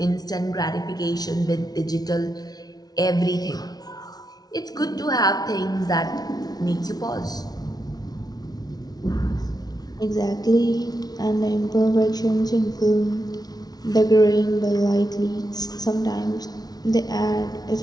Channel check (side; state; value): right; late; 0.19 ms